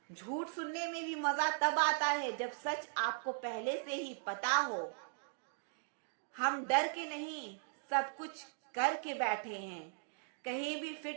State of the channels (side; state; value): left; silent; digital silence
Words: झूठ सुनने में भी मजा तब आता है जब सच आपको पहले से ही पता हो। हम डर के नहीं, सब कुछ करके बैठे हैं। कहीं भी